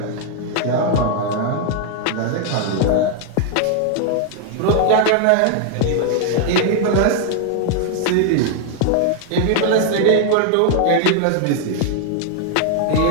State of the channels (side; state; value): both; different; correlation 0.00